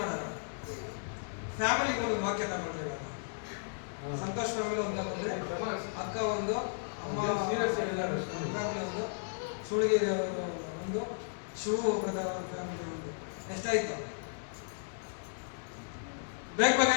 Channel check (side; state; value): right; silent; digital silence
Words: ಫ್ಯಾಮಿಲಿಗೆ ಒಂದು ವಾಕ್ಯ ತಗೊಂಡ್ರೆ ಇವಾಗ ಸಂತೋಷ್ ಫ್ಯಾಮಿಲಿ ಒಂದು ತಗೊಂಡ್ರೆ, ಅಕ್ಕ ಒಂದು, ಅಮ್ಮ ಫ್ಯಾಮಿಲಿ ಒಂದು, ಸುಳಿಗಿರಿ ಅವರು ಒಂದು, ಶಿವ ಬ್ರದರ್ ಫ್ಯಾಮಿಲಿ ಒಂದು. ಎಷ್ಟಾಯ್ತು? ಬೇಗ ಬೇಗ